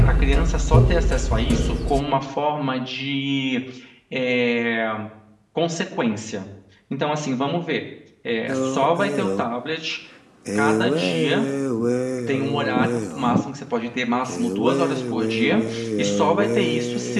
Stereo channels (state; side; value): identical; both; correlation 1.00